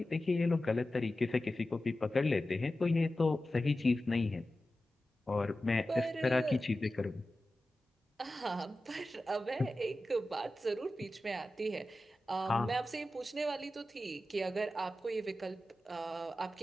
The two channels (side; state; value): both; normal; correlation 0.94